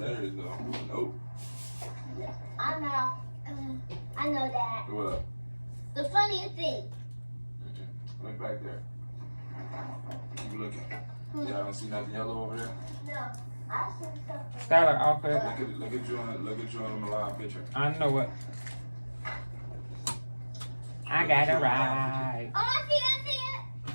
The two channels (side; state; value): both; inverted; correlation -1.00